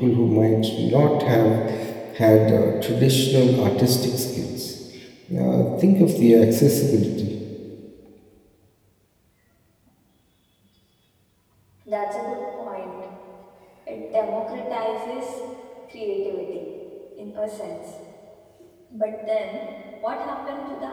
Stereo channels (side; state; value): both; identical; correlation 1.00